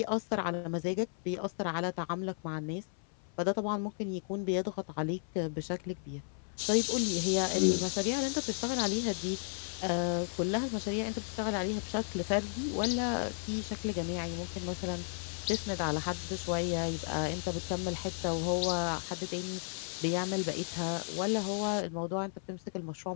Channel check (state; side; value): silent; right; 55 dB below the other